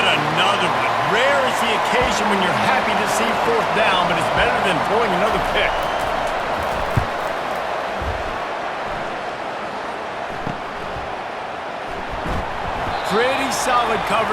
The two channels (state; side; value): identical; both; correlation 1.00